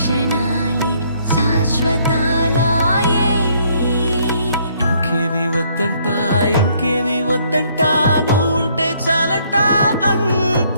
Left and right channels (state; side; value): inverted; both; correlation -0.66